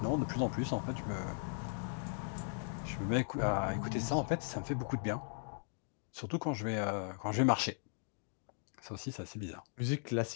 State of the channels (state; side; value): silent; right; digital silence